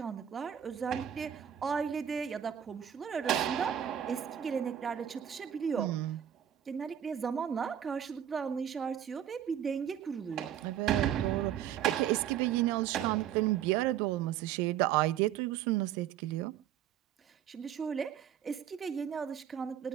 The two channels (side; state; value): left; quieter; 10.0 dB